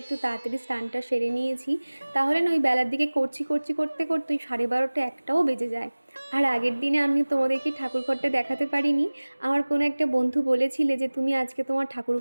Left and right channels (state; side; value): inverted; both; correlation -1.00